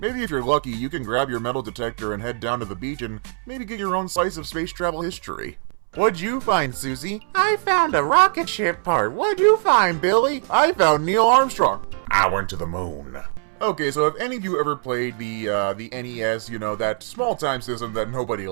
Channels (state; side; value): silent; left; 64 dB below the other